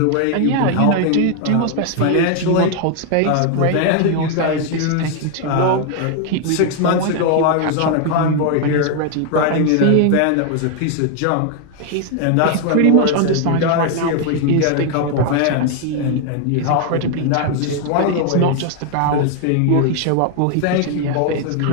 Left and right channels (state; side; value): different; both; correlation 0.01